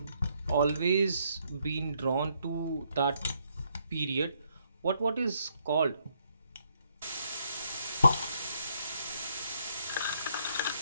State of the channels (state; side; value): inverted; both; correlation -0.72